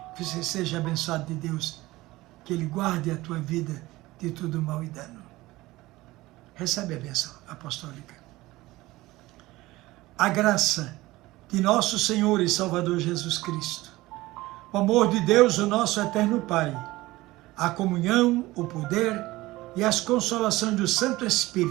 Que você seja abençoado de Deus. Que Ele guarde a tua vida de todo mal e dano. Recebe a bênção apostólica. A graça de nosso Senhor e Salvador Jesus Cristo, o amor de Deus, o nosso eterno Pai, a comunhão, o poder e as consolações do Santo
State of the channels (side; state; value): left; quieter; 18.8 dB